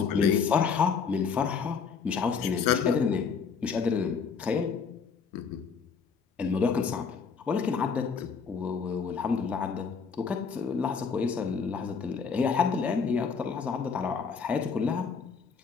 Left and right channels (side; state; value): right; quieter; 5.8 dB